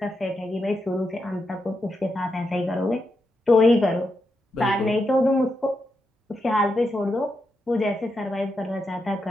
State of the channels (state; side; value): normal; both; correlation 0.84